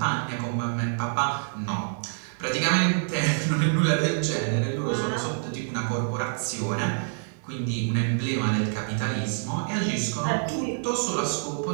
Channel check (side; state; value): left; silent; 60 dB below the other